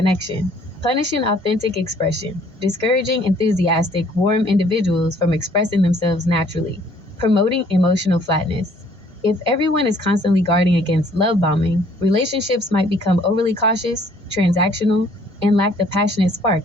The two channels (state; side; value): normal; both; correlation 0.60